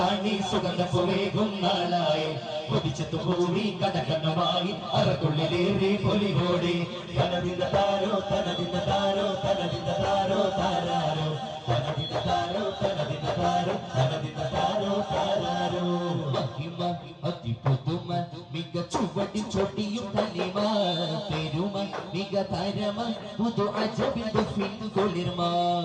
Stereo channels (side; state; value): both; identical; correlation 1.00